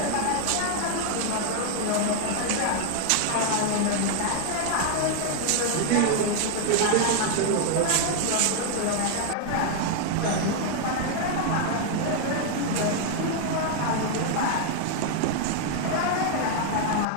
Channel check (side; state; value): both; different; correlation 0.00